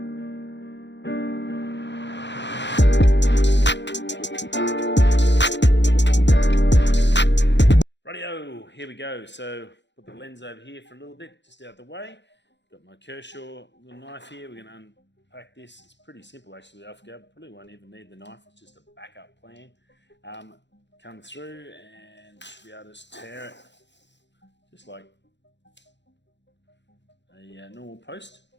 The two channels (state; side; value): late; right; 0.52 ms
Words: Rightio, here we go. So put the lens over here for a little bit, just out the way. Got my Kershaw little knife here. We're going to unpack this. It's pretty simple actually with Alphagvrd. Probably won't even need the knife. It's just a backup plan. Come through and should be able to just tear it just like a normal post.